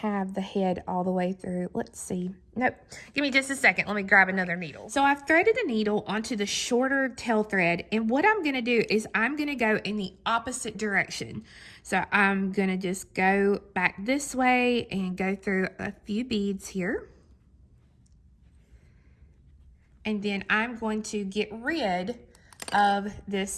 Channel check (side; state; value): both; identical; correlation 1.00